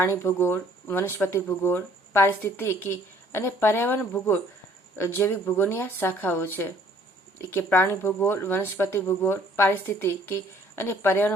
ભૂગોળ, વનસ્પતિ ભૂગોળ, પારિસ્થિતિકી અને પર્યાવરણ ભૂગોળ જૈવિક ભૂગોળની આ શાખાઓ છે. કે પ્રાણી ભૂગોળ, વનસ્પતિ ભૂગોળ, પારિસ્થિતિકી અને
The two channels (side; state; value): both; normal; correlation 0.58